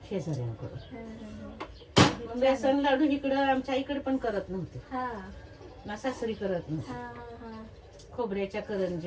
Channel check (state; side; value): identical; both; correlation 1.00